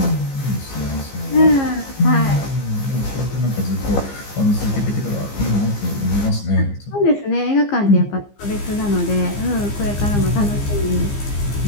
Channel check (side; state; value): right; late; 15 ms